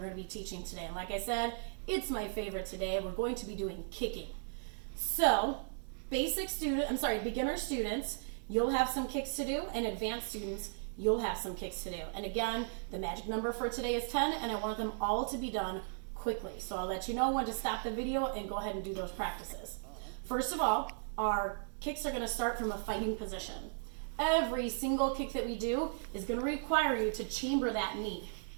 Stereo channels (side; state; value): left; silent; digital silence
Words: to be teaching today. And like I said, it's my favorite today. We're going to be doing kicking. So, beginner students, you'll have some kicks to do, and advanced students, you'll have some kicks to do. And again, the magic number for today is 10, and I want them all to be done quickly. So I'll let you know when to stop the video and go ahead and do those practices. First of all, our kicks are going to start from a fighting position. Every single kick that we do is going to require you to chamber that knee.